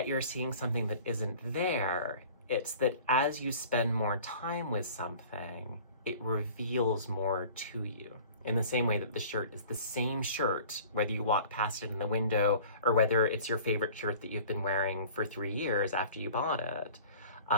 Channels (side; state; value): both; inverted; correlation -0.46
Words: you're seeing something that isn't there. It's that as you spend more time with something, it reveals more to you. In the same way that the shirt is the same shirt, whether you walk past it in the window or whether it's your favorite shirt that you've been wearing for 3 years after you bought it.